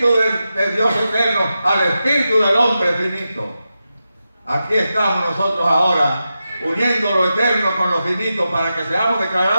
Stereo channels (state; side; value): inverted; both; correlation -0.90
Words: de Dios eterno al Espíritu del hombre finito. Aquí estamos nosotros ahora, uniendo lo eterno con lo finito para que seamos